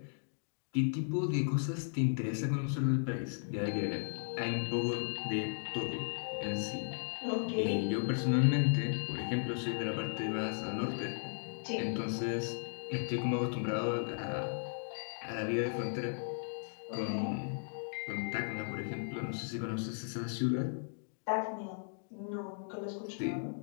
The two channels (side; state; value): right; silent; digital silence